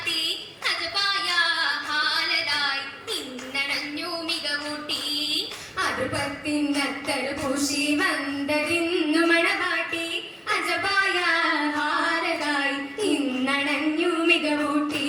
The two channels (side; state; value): both; identical; correlation 1.00